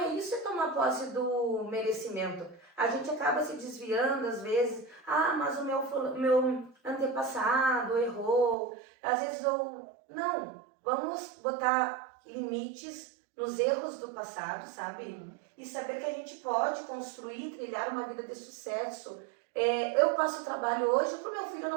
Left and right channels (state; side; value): drops out; left; at 8.6 s